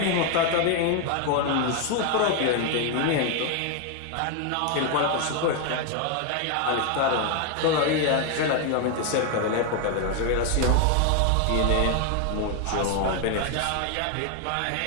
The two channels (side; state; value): both; different; correlation 0.01